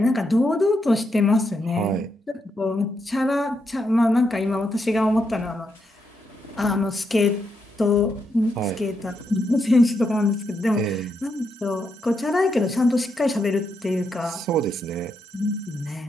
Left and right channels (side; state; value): both; normal; correlation 0.81